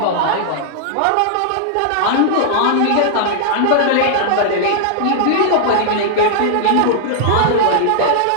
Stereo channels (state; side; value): different; both; correlation -0.01